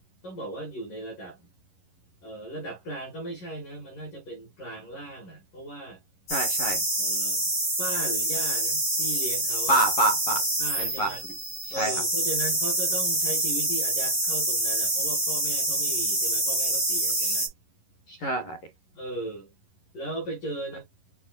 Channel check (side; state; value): right; late; 11 ms